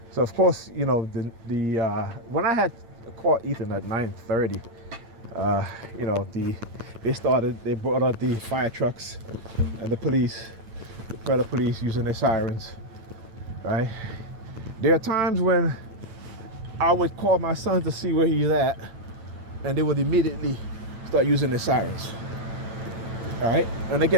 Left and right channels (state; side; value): late; left; 9.0 ms